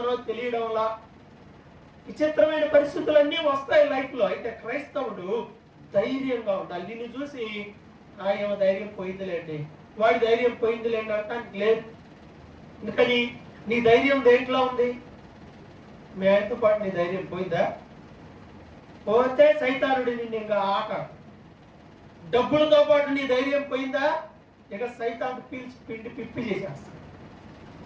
తెలియడంలా, విచిత్రమైన పరిస్థితులన్నీ వస్తాయి లైఫ్లో. అయితే క్రైస్తవుడు ధైర్యంగా ఉండాలి. నిన్ను చూసి ఏమో ధైర్యం పోయిందిలేండి, వాడి ధైర్యం పోయిందిలేండి అంటానికి లేదు. ఎందుకని? నీ ధైర్యం దేంట్లో ఉంది? మీ ఆయనతో పాటు నీ ధైర్యం పోయిందా? పోతే సైతానుడి నిన్ను ఇంకా ఆట. డబ్బులతో పాటు నీ ధైర్యం పోయిందా? ఇక సైతాను పీల్చి పిండి పిప్పి చేసేస్తాడు.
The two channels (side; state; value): both; identical; correlation 1.00